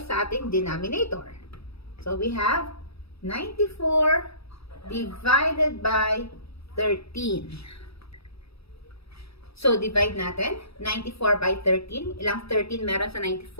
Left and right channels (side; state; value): right; late; 0.77 ms